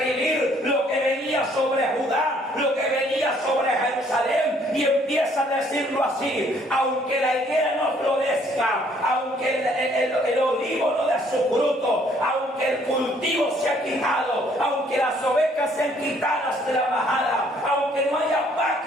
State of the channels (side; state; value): both; normal; correlation 0.63